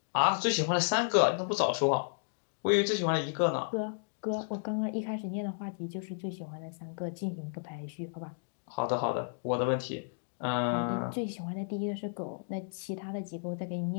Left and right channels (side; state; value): right; silent; digital silence